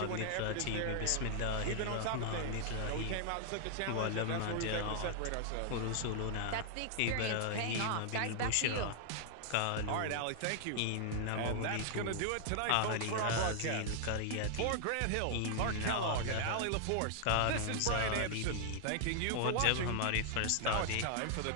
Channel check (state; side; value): different; both; correlation 0.00